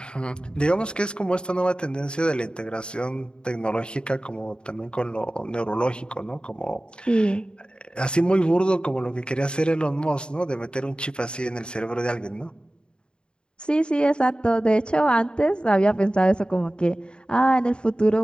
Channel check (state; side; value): late; right; 0.051 ms